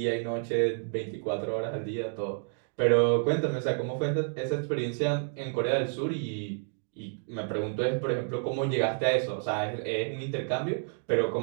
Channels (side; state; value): left; silent; 58 dB below the other